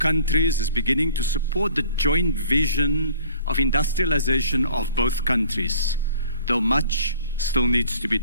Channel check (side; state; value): both; inverted; correlation -0.52